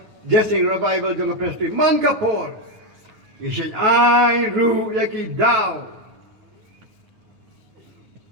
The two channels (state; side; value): late; left; 9.3 ms